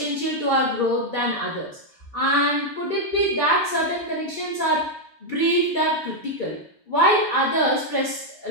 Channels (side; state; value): both; normal; correlation 0.00